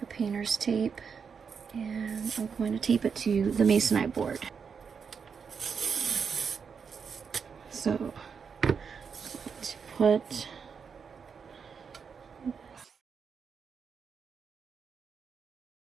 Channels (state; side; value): quieter; left; 6.2 dB